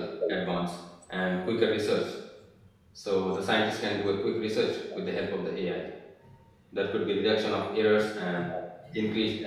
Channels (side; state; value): both; identical; correlation 1.00